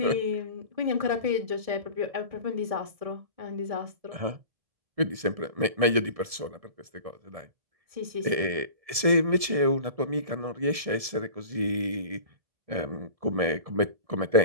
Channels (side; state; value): left; late; 1.7 ms